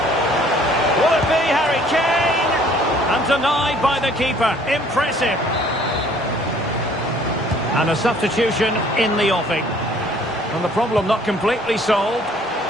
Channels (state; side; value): normal; both; correlation 0.57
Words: Will it be Harry Kane? And denied by the keeper. Impressive. And a substitution in the offing. And the problem not completely solved.